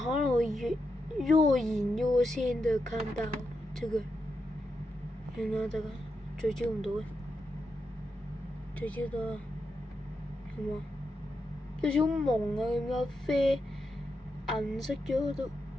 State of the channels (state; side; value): normal; both; correlation 0.85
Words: 能會若隱若現的看到這個，原來這個聚焦唔到嘅，聚焦到啦，係嘛？有少朦啊，咁樣啡銀色咗度，